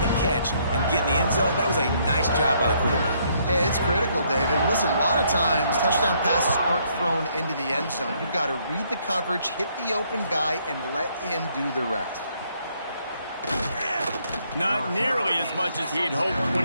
the catch and get in the end zone, that was a nice job by the quarterback. Yeah, it's critical, David. Listen, a lot of times touchdown passes aren't thrown into the end zone. You've got to read the coverage, hit the open guy, and let him do the rest. Not nearly as much as he'd hoped when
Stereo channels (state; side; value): inverted; both; correlation -0.69